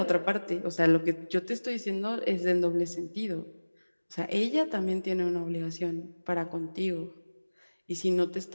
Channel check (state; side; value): inverted; both; correlation -1.00